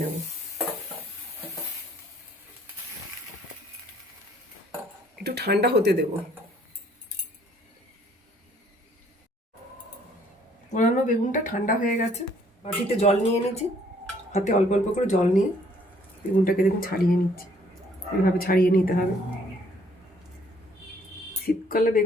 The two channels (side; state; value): both; normal; correlation 0.62